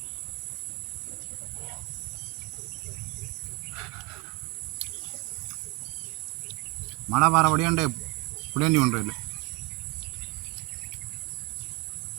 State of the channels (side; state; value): left; quieter; 25.4 dB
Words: மழை வர வழியாண்டு புடேண்டி ஒன்றும் இல்லை.